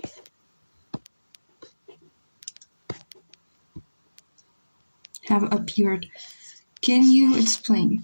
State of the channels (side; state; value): both; inverted; correlation -1.00